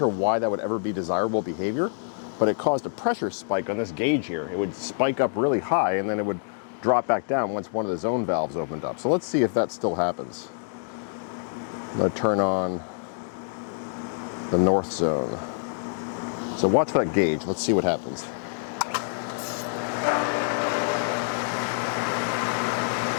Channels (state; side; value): silent; right; digital silence